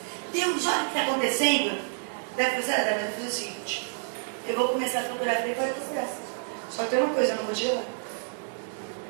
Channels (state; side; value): silent; left; digital silence